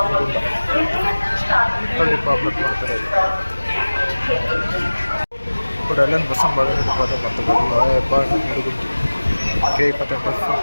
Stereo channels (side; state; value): both; inverted; correlation -1.00